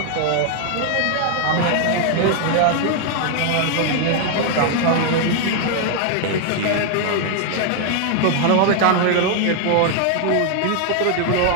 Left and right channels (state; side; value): different; both; correlation 0.00